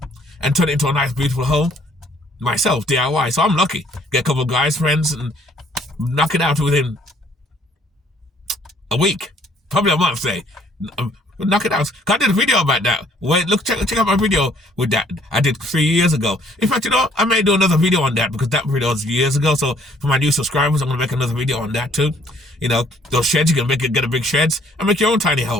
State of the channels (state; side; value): normal; both; correlation 0.62